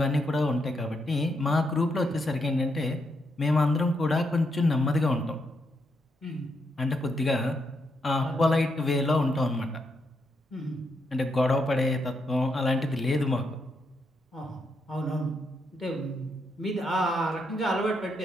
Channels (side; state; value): both; normal; correlation 0.80